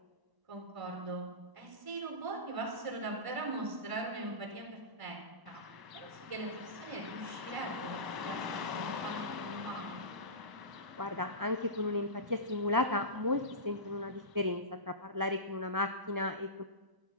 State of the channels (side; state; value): left; late; 1.0 ms